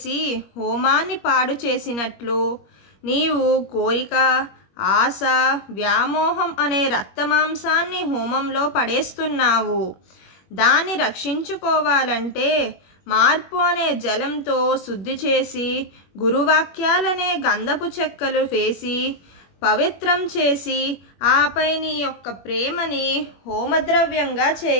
హోమాన్ని పాడు చేసినట్లు నీవు కోరిక, ఆశ, వ్యామోహం అనే రక్తమాంసాన్ని హోమంలో పడేస్తున్నావు. దాన్ని రక్షించుకోవాలంటే మార్పు అనే జలంతో శుద్ధి చేసి గురువాక్యాలనే గంధపు చెక్కలు వేసి పవిత్రం చేసి ఆపై నీ యొక్క ప్రేమని హోమద్రవ్యంగా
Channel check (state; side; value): late; right; 21 ms